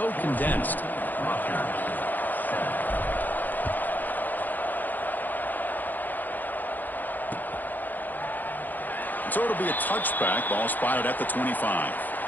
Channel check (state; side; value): late; right; 0.086 ms